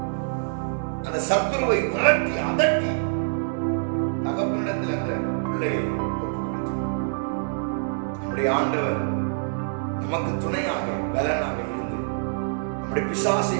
அந்த சத்துருவை விரட்டி அதட்டி தகப்பனிடத்தில் அந்த பிள்ளையை ஒப்புவித்தார். நம்முடைய ஆண்டவர் நமக்கு துணையாக பலனாக இருந்து நம்முடைய பிசாசை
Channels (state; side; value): silent; left; digital silence